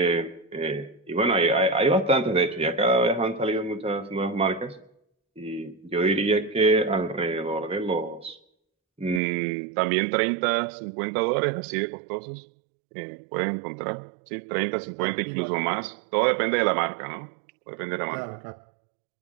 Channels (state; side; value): drops out; left; at 9.2 s